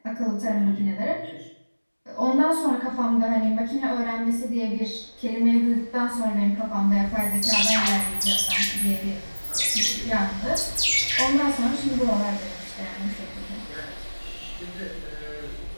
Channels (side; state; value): both; inverted; correlation -1.00